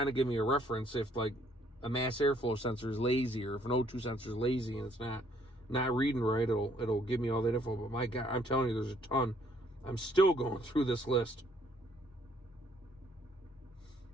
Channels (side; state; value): both; normal; correlation 0.65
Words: of give me a reference if like a mass airflow sensor is lazy, or if an O2 sensor is lazy and it's not reading right, it'll give me all that info. But my God, I'm telling you, there's a ton. I'm still going through this list.